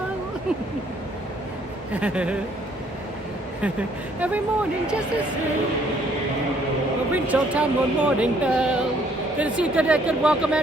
Every morning just the same. We'll ring Town one morning bell. Good to see you. Good welcome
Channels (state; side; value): normal; both; correlation 0.65